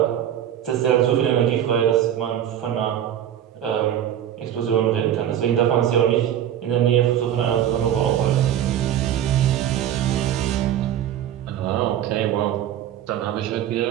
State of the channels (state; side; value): quieter; left; 10.7 dB